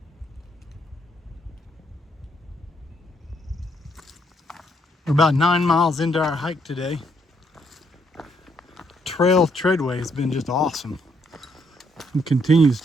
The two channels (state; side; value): normal; both; correlation 0.72